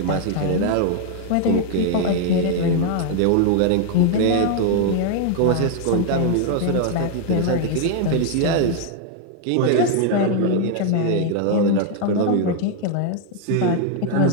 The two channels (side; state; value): both; different; correlation 0.00